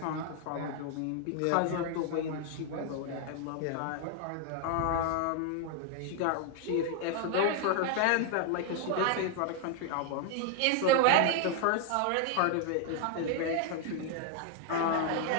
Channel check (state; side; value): different; both; correlation 0.00